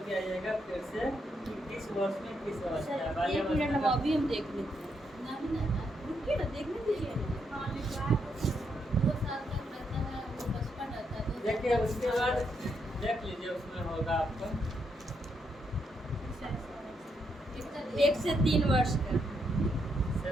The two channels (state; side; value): normal; both; correlation 0.78